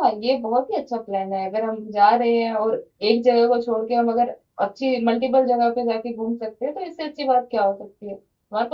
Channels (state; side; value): identical; both; correlation 1.00